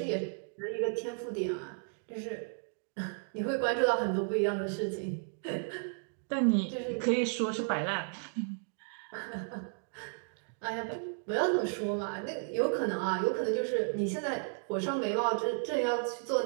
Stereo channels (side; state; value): left; silent; 55 dB below the other